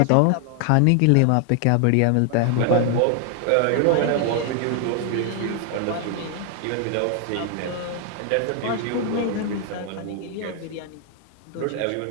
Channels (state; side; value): different; both; correlation 0.00